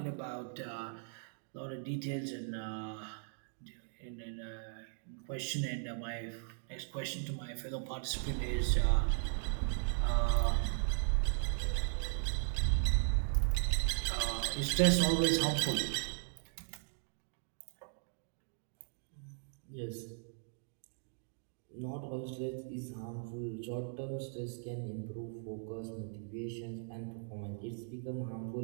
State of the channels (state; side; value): silent; left; digital silence